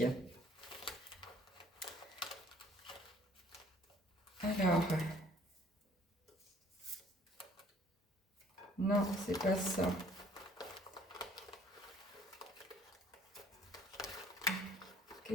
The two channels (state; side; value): normal; both; correlation 0.58